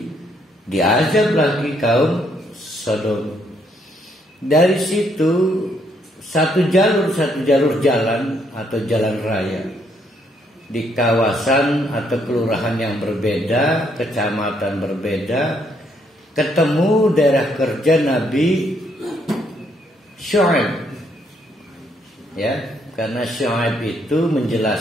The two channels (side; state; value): both; normal; correlation 0.71